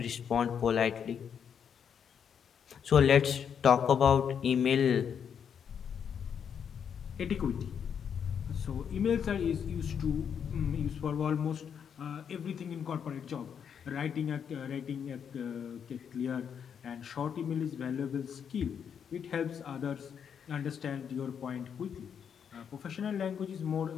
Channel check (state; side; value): quieter; right; 7.7 dB